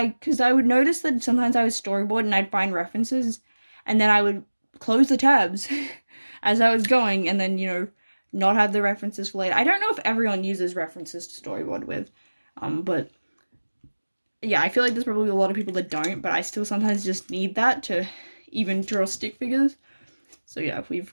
because I would notice that sometimes I would storyboard and I'd find references, and then I would close the tabs as I was going, and then, not have the references for later. I don't know if everyone uses references to storyboard with, but yeah, I feel like there's probably a lot of people that don't, but I still sometimes just need that to even draw stick figures. So yeah,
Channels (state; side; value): inverted; both; correlation -1.00